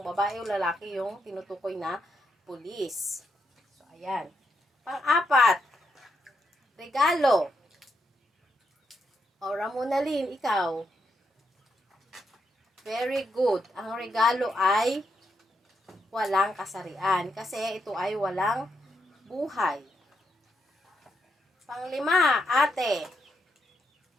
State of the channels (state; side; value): normal; both; correlation 0.80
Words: babae o lalaki yung tinutukoy na pulis. So, ayan. Pang-4, regalo. O, Ramonalyn, ikaw. Very good. Ang regalo ay walang kasarian. Kasi ito ay walang buhay. Pang-5, ate.